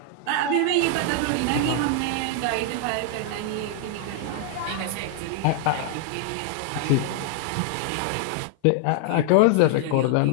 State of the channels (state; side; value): different; both; correlation 0.00